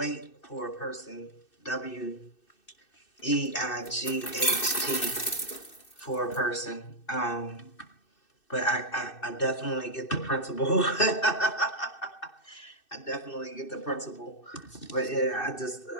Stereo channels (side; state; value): right; late; 2.6 ms